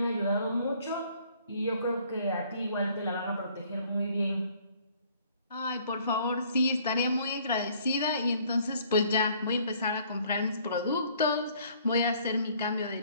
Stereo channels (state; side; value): inverted; both; correlation -0.59